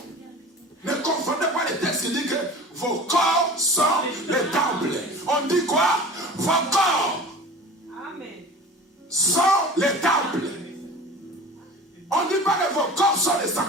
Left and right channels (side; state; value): both; normal; correlation 0.39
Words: Ne confondez pas les textes qui disent que vos corps sont les temples. On dit quoi? Vos corps sont les temples. On ne dit pas que vos corps sont les